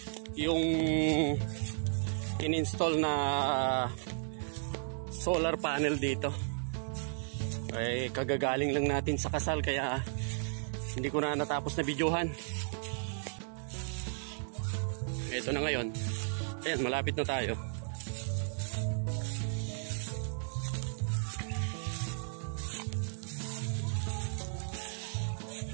yung in-install na solar panel dito. Ay kagagaling lang natin sa kasal kaya hindi ko na natapos na videohan. Ito na ngayon. Ayan, malapit na tayo.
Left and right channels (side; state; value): left; silent; digital silence